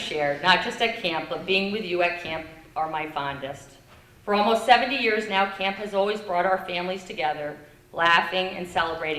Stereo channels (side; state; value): both; identical; correlation 1.00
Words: not just at camp, but being with you at camp are my fondest. For almost 70 years now, camp has always brought our families together, laughing and